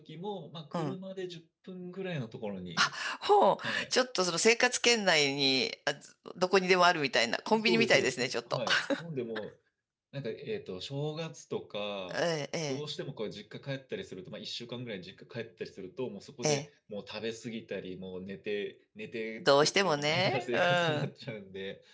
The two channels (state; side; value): identical; both; correlation 1.00